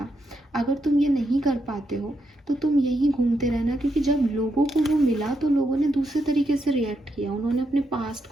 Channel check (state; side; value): normal; both; correlation 0.81